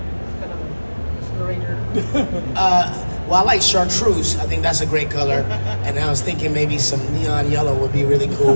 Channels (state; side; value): inverted; both; correlation -1.00